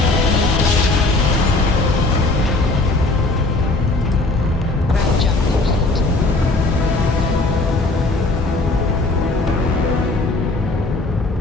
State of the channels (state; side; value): quieter; right; 3.1 dB